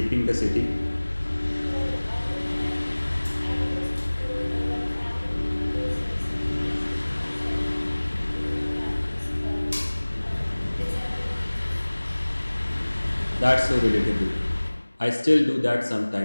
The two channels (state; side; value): inverted; both; correlation -1.00